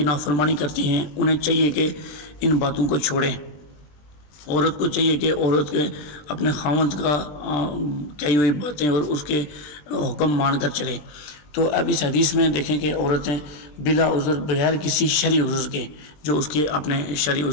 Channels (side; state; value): right; late; 20 ms